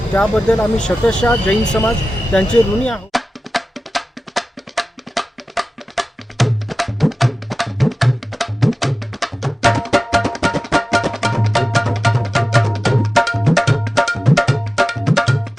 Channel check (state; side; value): normal; both; correlation 0.96